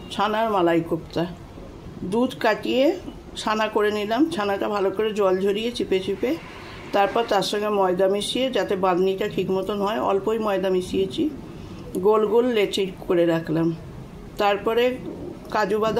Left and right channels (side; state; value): both; identical; correlation 1.00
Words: ছানার মালাই কোপ্তা। দুধ কাটিয়ে ছানা করে নিলাম। ছানাটা ভালো করে জল ঝরিয়ে চিপে চিপে তারপর তার সঙ্গে ময়দা মিশিয়ে, যাতে বাঁধনিটা ঠিক মতন হয়, অল্পই ময়দা মিশিয়েছি। গোল গোল লেচি করে রাখলাম। তারপরে কাজু